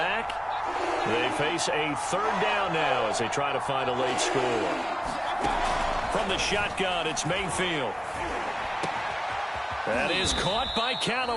They face a 3rd down now as they try to find a late score. From the shotgun, it's Mayfield. That is caught by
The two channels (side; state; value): both; identical; correlation 1.00